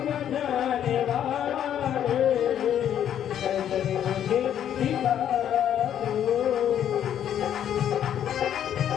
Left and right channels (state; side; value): quieter; right; 10.0 dB